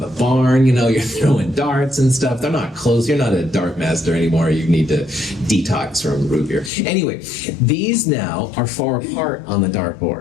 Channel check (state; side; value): drops out; right; at 6.7 s